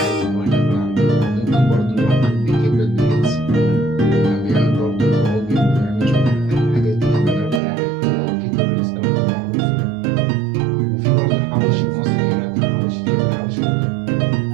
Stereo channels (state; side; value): drops out; left; at 7.6 s